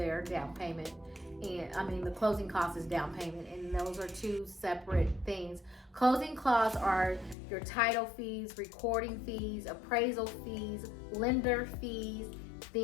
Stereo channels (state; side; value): drops out; right; at 7.4 s